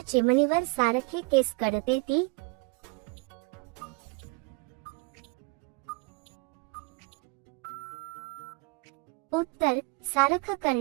चिमणीवर सारखे केस कळते ती. उत्तर सारखं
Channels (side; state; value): left; quieter; 28.6 dB